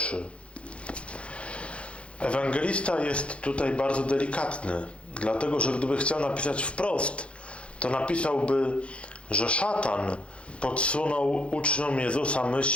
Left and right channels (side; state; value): right; late; 0.060 ms